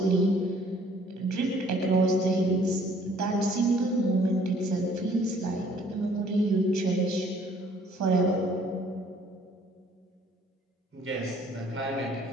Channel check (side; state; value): both; normal; correlation 0.59